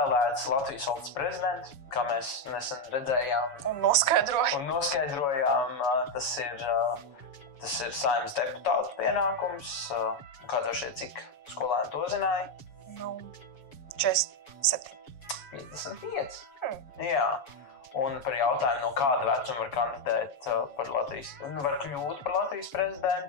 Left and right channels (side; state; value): right; late; 7.1 ms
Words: Latvijas valsts prezidents, kā mēs nesen redzējām Un noskaidrojām, tas ir Saeimas deputātu pienākums. Kā tev šķiet, cik skolēni to zināja? 47. 55. Jā. Un par jautājumu, no kāda vecuma var kandidēt par Latvijas, var kļūt par Latvijas